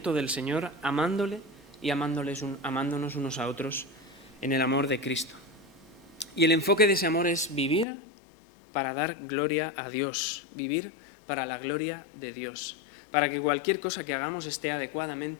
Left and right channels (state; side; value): drops out; right; at 7.9 s